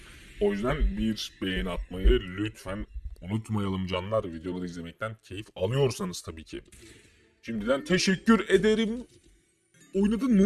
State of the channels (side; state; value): both; identical; correlation 1.00